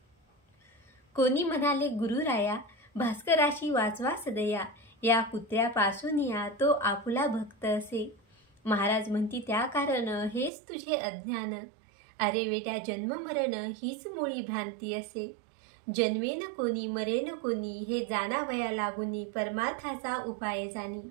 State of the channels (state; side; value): drops out; left; at 10.5 s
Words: कोणी म्हणाले गुरुराया, भास्कराशी वाचवा सदया, या कुत्र्यापासून या तो आपुला भक्त असे। महाराज म्हणती त्या कारण हेच तुझे अज्ञान, अरे वेड्या जन्म मरण हीच मुळी भ्रांती असे। जन्मेन कोणी मरेन कोणी, हे जाणावया लागुनी, परमार्थाचा उपाय जाणी।